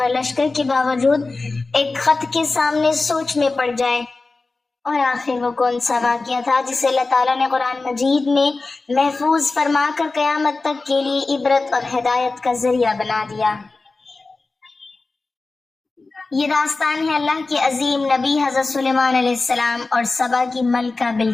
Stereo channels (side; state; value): right; quieter; 3.6 dB